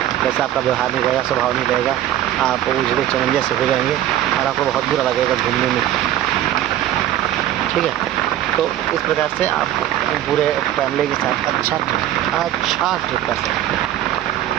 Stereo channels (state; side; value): quieter; left; 12.5 dB